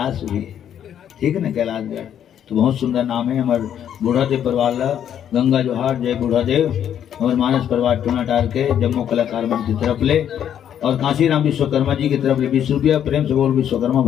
भी है। ठीक है ना कैलाशगढ़ तो बहुत सुंदर नाम है। हमारे बूढ़ादेव परिवार गंगा जोहार जय बूढ़ादेव और मानस परिवार टूनाटार के जम्मू कलाकार मंच की तरफ ले और काशीराम विश्वकर्मा जी की तरफ ले 20 रुपया। प्रेम से बोल विश्वकर्मा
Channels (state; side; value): quieter; right; 9.6 dB